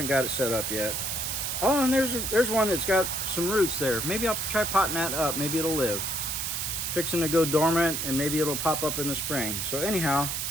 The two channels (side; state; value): right; noise; hiss, 2 dB below the sound